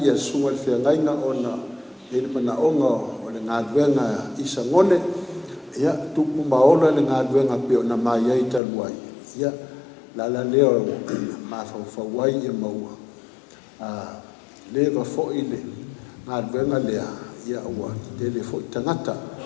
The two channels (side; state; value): right; drops out; at 8.6 s